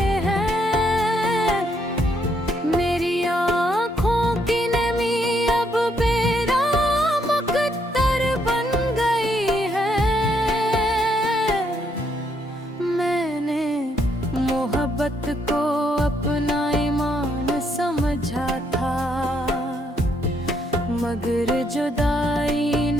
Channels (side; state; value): both; normal; correlation 0.73